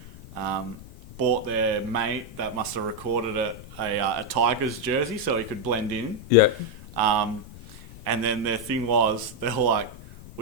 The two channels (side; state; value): left; noise; rumble, 17 dB below the sound